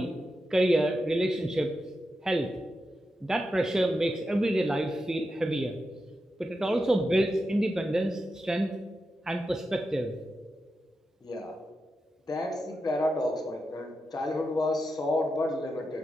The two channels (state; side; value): normal; both; correlation 0.89